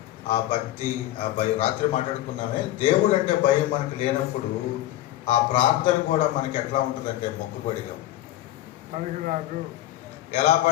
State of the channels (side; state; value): right; quieter; 14.7 dB